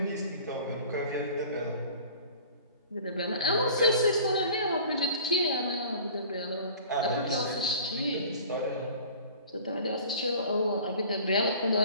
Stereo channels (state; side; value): inverted; both; correlation -0.44